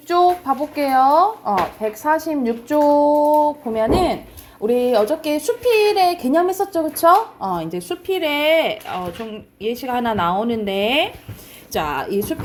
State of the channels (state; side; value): identical; both; correlation 1.00